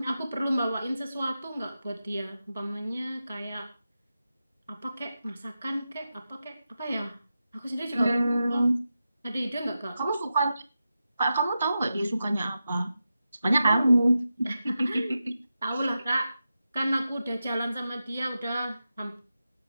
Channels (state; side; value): inverted; both; correlation -0.91